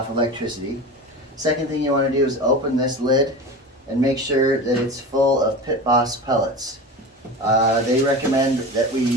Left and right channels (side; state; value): both; normal; correlation 0.30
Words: electricity. Second thing you want to do is open this lid and make sure that it's full of Pitboss pellets. They recommend that we